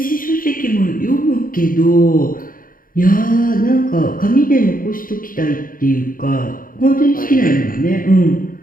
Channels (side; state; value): right; late; 0.41 ms